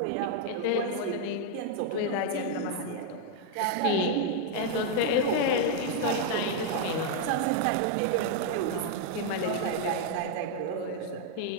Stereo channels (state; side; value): different; both; correlation 0.00